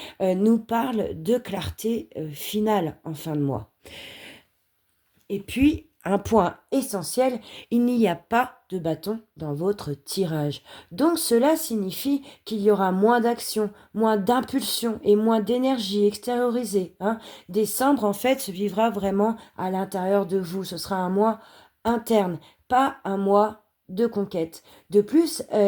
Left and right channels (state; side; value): identical; both; correlation 1.00